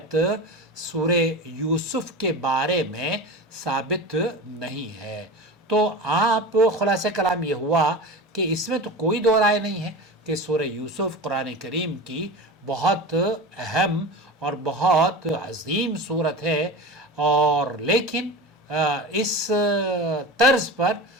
سورہ یوسف کے بارے میں ثابت نہیں ہے، تو آپ خلاصہ کلام یہ ہوا کہ اس میں تو کوئی دو رائے نہیں ہے کہ سورہ یوسف قرآن کریم کی بہت اہم اور بہت عظیم سورت ہے، اور لیکن اس طرز پر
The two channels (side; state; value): both; normal; correlation 0.30